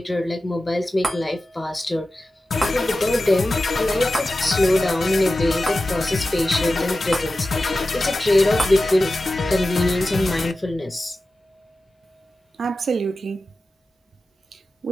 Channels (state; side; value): normal; both; correlation 0.94